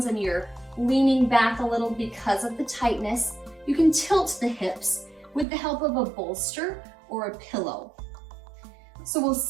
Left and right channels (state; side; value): drops out; left; at 5.5 s